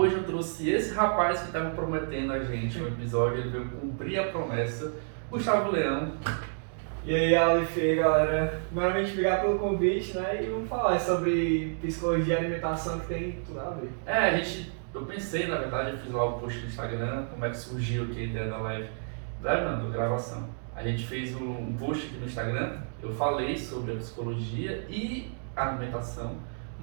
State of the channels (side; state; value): left; silent; digital silence